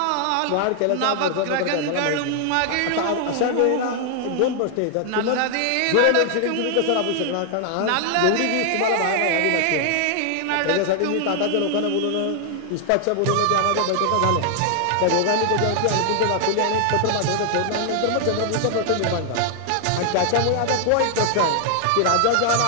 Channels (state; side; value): different; both; correlation 0.00